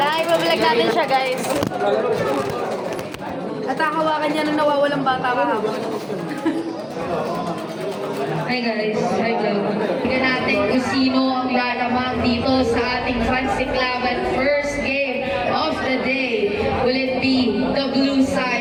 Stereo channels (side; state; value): both; identical; correlation 1.00